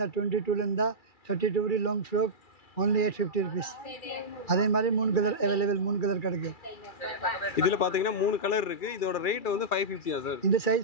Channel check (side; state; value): right; late; 2.3 ms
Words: 22லேருந்தா 32 வரை லாங் ஃப்ராக் only 850 rupees. அதே மாதிரி 3 கலர் அவைலபிள். 3 கலர் கிடைக்கும். இதில் பார்த்தீங்கன்னா 3 கலர் இருக்குது. இதோட ரேட் வந்து 550 சார். இந்த